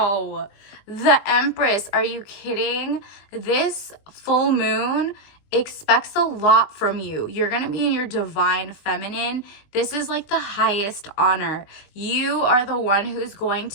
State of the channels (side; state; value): right; late; 20 ms